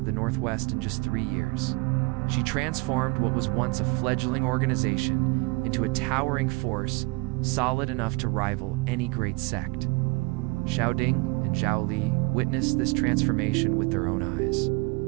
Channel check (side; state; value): left; quieter; 27.4 dB